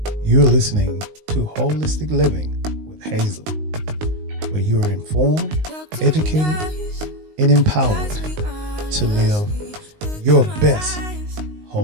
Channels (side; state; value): left; late; 19 ms